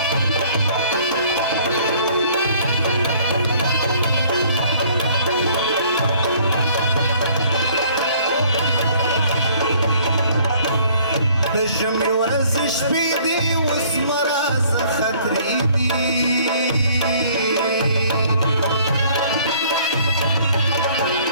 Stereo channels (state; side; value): inverted; both; correlation -0.58